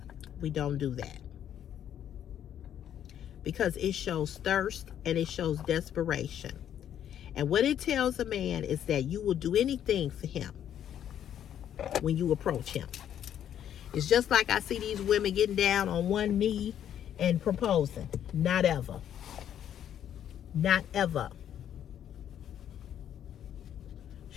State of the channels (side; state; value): right; quieter; 10.1 dB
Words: We don't do that. Because it shows thirst and it shows desperation. And what it tells a man is that you will do anything for him when you approach him. It's just like I see these women getting down on one knee and proposing. Not ever. Not ever.